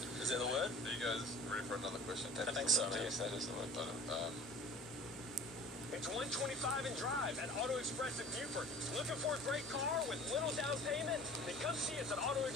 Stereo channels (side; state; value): both; normal; correlation 0.43